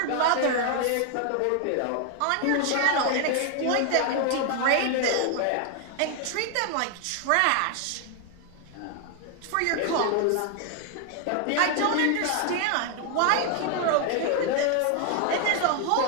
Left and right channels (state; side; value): different; both; correlation 0.01